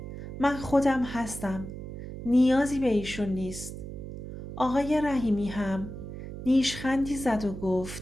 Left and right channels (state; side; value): noise; right; hum, 9 dB below the sound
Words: من خودم هستم. نیازی به ایشون نیست. آقای رحیمی هم نیشخندی زد و